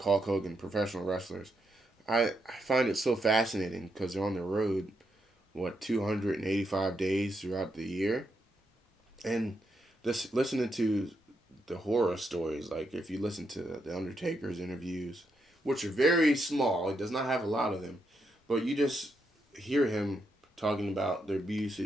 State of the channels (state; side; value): normal; both; correlation 0.81